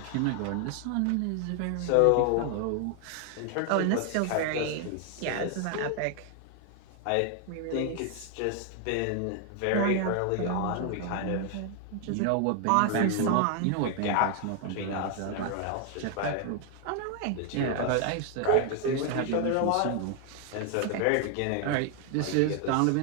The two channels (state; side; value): different; both; correlation 0.00